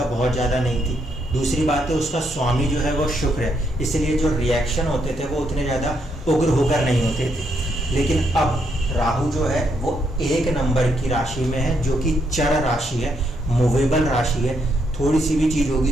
बहुत ज़्यादा नहीं थी। दूसरी बात है, उसका स्वामी जो है वो शुक्र है, इसलिए जो रिएक्शन होते थे वो उतने ज़्यादा उग्र होकर नहीं होते थे। लेकिन अब राहु जो है वो 1 नंबर की राशि में है, जो कि चर राशि है, मूवेबल राशि है। थोड़ी सी भी चीज़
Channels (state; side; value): normal; both; correlation 0.76